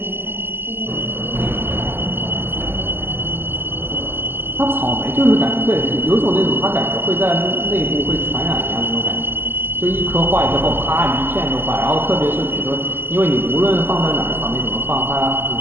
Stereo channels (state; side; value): late; left; 0.098 ms